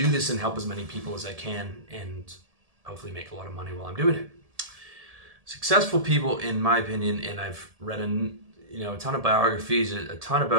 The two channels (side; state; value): left; late; 1.7 ms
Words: this and help as many people as I can and hopefully make a lot of money while I'm doing it. Successful people, in my opinion, and I've read a ton of biographies, a ton